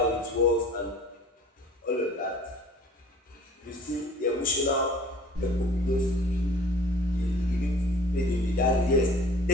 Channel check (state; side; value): normal; both; correlation 0.48